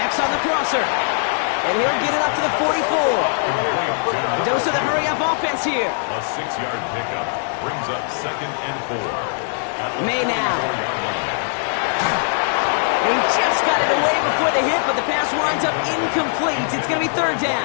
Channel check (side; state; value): right; silent; 61 dB below the other